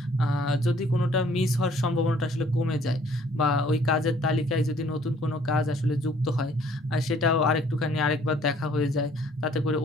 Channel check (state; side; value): normal; both; correlation 0.59